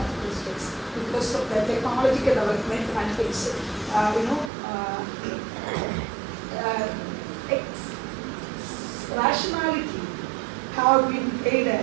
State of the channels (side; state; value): left; drops out; at 4.5 s